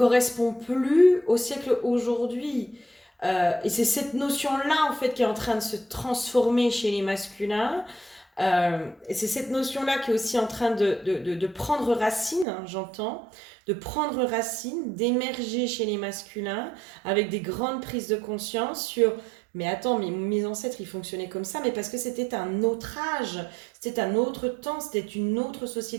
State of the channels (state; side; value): drops out; left; at 12.5 s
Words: plus au siècle aujourd'hui. Et c'est cette notion-là, en fait, qui est en train de se transformer chez les masculins. Et c'est cette notion-là qui est aussi en train de prendre racine, hein, j'entends, de prendre racine, d'émerger chez les masculins, avec des grandes prises de conscience sur... Mais attends, mes ancêtres, ils fonctionnaient comme ça, mais parce que c'était un autre âge, c'était un autre temps, c'était une autre